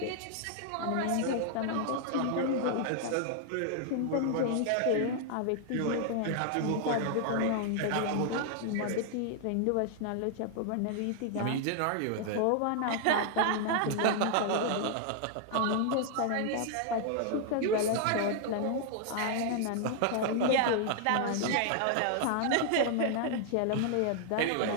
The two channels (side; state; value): both; different; correlation 0.00